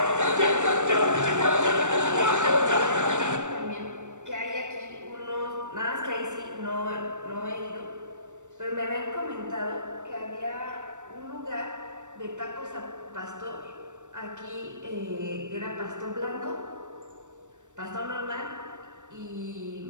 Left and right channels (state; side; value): late; left; 0.85 ms